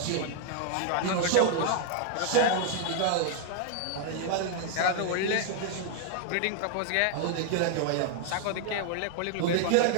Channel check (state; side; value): different; both; correlation -0.01